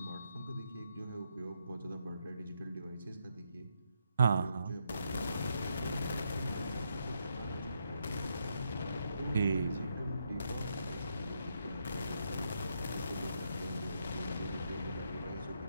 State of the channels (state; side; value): inverted; both; correlation -0.78